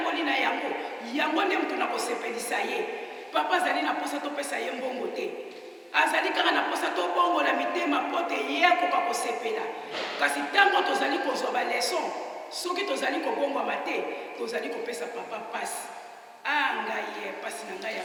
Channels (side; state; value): both; identical; correlation 1.00